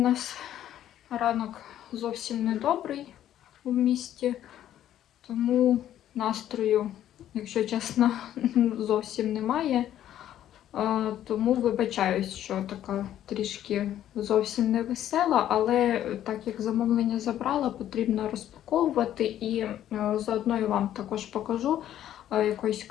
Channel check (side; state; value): right; quieter; 11.6 dB